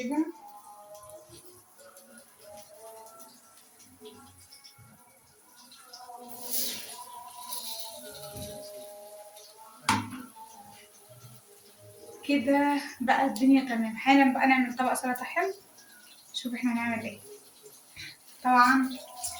كده بقى الدنيا تمام. حالا بقى نعمل طبق سلطة حلو. شوف احنا هنعمل ايه. طبعا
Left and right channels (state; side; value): identical; both; correlation 1.00